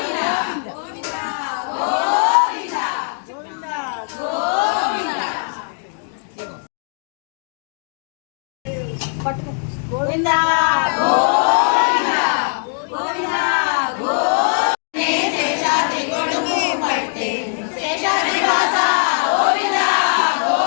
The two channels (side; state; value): right; silent; 57 dB below the other